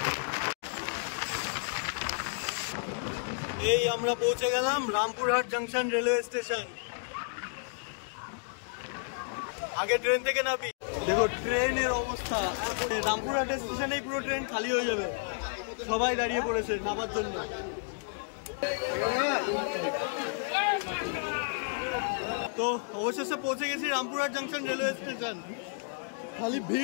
এই আমরা পৌঁছে গেলাম রামপুরহাট জাংশন রেলওয়ে স্টেশন। আগে ট্রেন থেকে নামি, দেখো ট্রেনের অবস্থা। রামপুরহাট স্টেশনেই পুরো ট্রেন খালি হয়ে যাবে, সবাই দাঁড়িয়ে পড়েছে নামার জন্য। তো অবশেষে পৌঁছে গেছি রামপুরহাট জাংশন রেলওয়ে স্টেশন। খালি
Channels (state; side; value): silent; right; digital silence